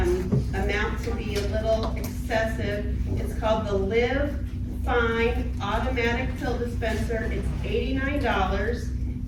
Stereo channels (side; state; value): both; identical; correlation 1.00